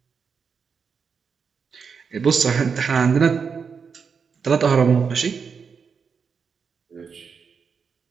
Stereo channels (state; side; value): quieter; left; 6.0 dB